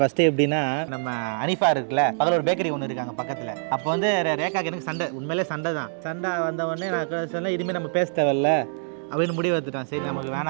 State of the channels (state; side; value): silent; left; 62 dB below the other